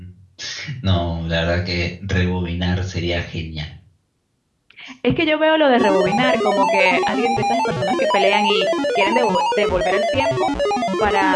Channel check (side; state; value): both; identical; correlation 1.00